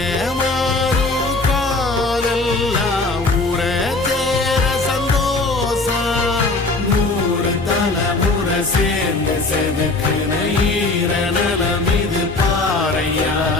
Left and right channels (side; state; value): right; quieter; 3.3 dB